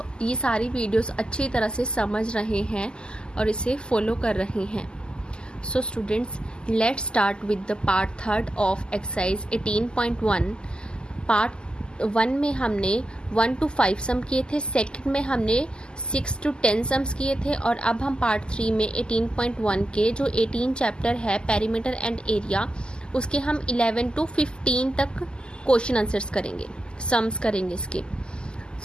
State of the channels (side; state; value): right; late; 0.047 ms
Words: ये सारी वीडियोस अच्छी तरह से समझ रहे हैं और इसे फॉलो कर रहे हैं। So students, let's start with the part third of exercise 18.1. Part 1 में हमने 1 to 5 सम किए थे, सेकंड में हमने 6 to 10 सम्स किए थे, और अब हम पार्ट 3 में 18.1 के जो 18 चैप्टर है पेरीमीटर एंड एरिया, उसके हम 11 to 15 तक क्वेश्चन आंसर्स करेंगे, सम्स करेंगे इसके।